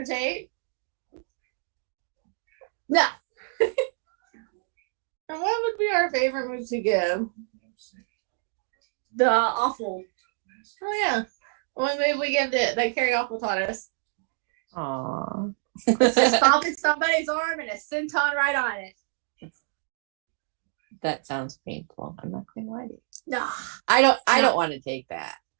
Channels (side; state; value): left; silent; 55 dB below the other